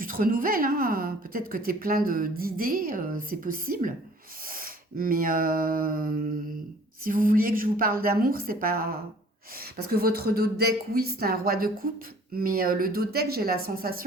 te renouvelles, hein. Peut-être que tu es plein d'idées, c'est possible. Mais si vous vouliez que je vous parle d'amour, c'est pas... Parce que votre dos de deck, oui, c'est un roi de coupe, mais le dos de deck, j'ai la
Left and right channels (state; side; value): normal; both; correlation 0.52